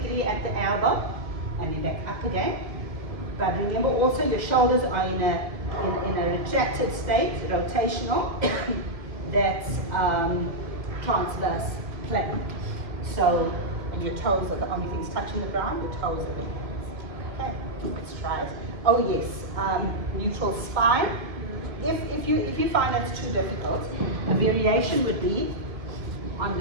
at the elbow, and then back up again. But remember also your shoulders are in a retracted state, rotational, that's transverse plane. So, and your toes are the only things touching the ground, your toes are the hands. Okay, let's try it. Oh yes, neutral spine. If you find that's too difficult, a variation would be on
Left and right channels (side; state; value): left; late; 2.2 ms